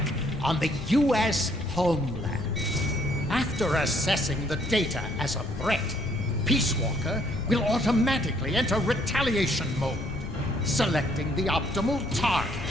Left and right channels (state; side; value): noise; left; rumble, 8 dB below the sound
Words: on the U.S. homeland. After assessing the data as a threat, Peace Walker will automatically enter retaliation mode, selecting the optimal